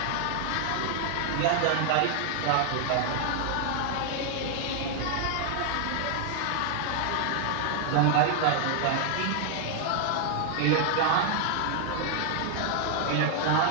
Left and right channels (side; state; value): both; different; correlation 0.00